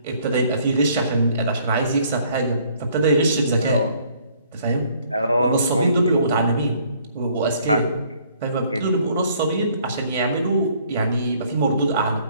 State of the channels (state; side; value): inverted; both; correlation -0.62